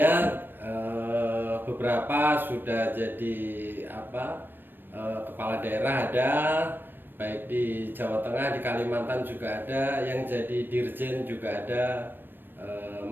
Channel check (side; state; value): left; late; 0.097 ms